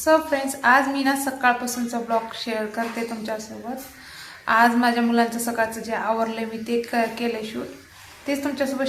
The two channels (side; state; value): both; identical; correlation 1.00